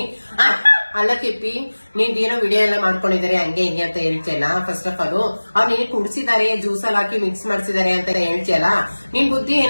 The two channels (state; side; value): inverted; both; correlation -1.00